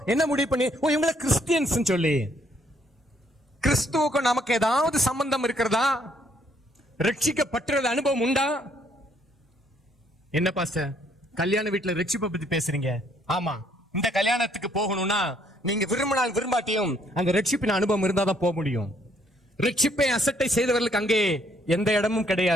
என்ன முடிவு பண்ணி ஓ இவங்கள கிறிஸ்டியன்ஸ் சொல்லி. கிறிஸ்துவுக்கும் நமக்கு ஏதாவது சம்பந்தம் இருக்கிறதா? ரட்சிக்கப்பட்டது அனுபவம் உண்டா? என்ன பாஸ்டர் கல்யாண வீட்டுல ரட்சிப்பை பத்தி பேசுறீங்க? ஆமா, இந்த கல்யாணத்துக்கு போகணும்னா நீங்க விரும்பினால் விரும்பாட்டியும் அந்த ரட்சிப்பின் அனுபவம் இருந்தா தான் போக முடியும். ரட்சிப்பை அசட்டை செய்தவர்களுக்கு அங்கே எந்த இடமும்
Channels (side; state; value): both; normal; correlation 0.68